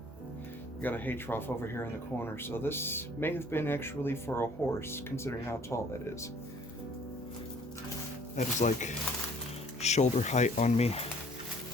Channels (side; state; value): both; normal; correlation 0.56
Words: got a hay trough over here in the corner, so this may have been actually for a horse, considering how tall that is. That is like shoulder height on me.